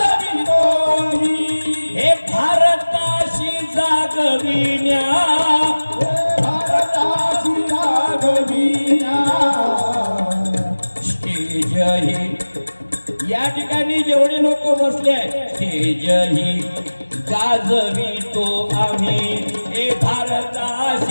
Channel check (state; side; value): inverted; both; correlation -1.00